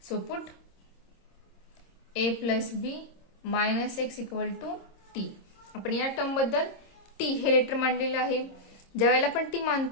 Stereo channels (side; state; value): right; late; 26 ms